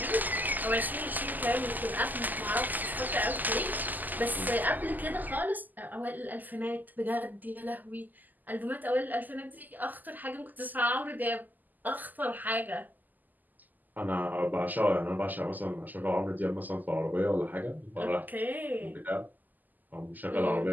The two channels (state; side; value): late; left; 0.084 ms